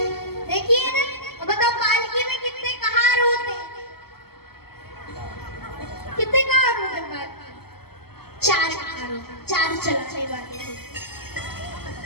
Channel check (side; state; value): right; late; 0.96 ms